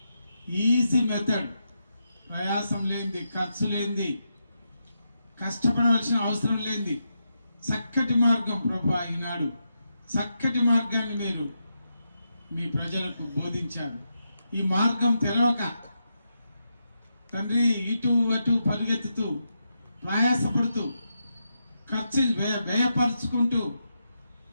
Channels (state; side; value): inverted; both; correlation -0.85